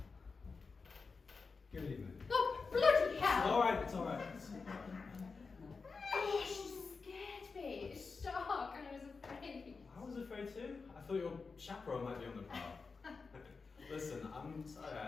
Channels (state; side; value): quieter; right; 4.6 dB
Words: Good evening. Oh, bloody hell! Alright, it's alright. Oh, she scared me. I thought your chaperone might be on the prowl. Listen, I'm sorry I